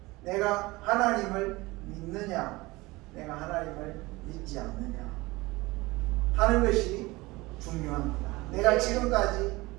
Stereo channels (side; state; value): left; quieter; 21.6 dB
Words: 내가 하나님을 믿느냐 내가 하나님을 믿지 않느냐 하는 것이 중요합니다. 내가 지금까지